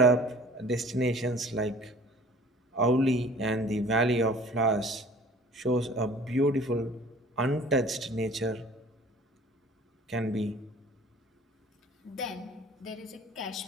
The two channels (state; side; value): normal; both; correlation 0.48